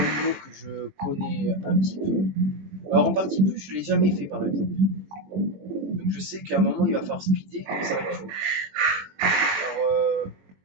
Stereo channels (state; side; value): late; left; 21 ms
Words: niveau que je connais un petit peu. Alors en partie plus, je ne l'ai jamais fait par exemple. Donc je sais qu'à un moment, il va falloir speeder et ça va être chaud. Alors,